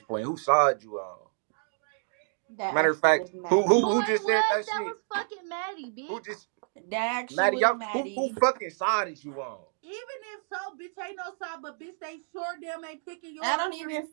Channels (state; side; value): silent; left; digital silence